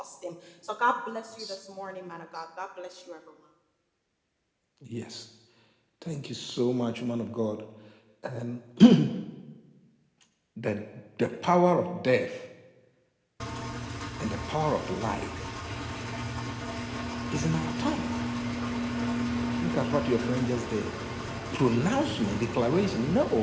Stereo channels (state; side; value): identical; both; correlation 1.00